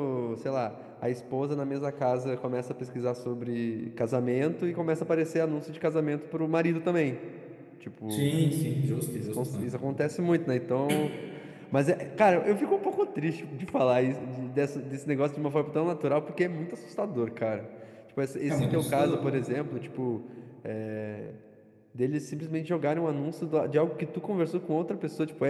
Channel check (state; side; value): identical; both; correlation 1.00